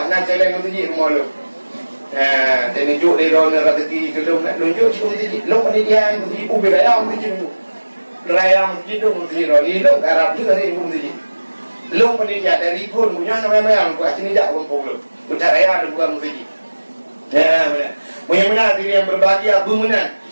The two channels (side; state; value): both; inverted; correlation -1.00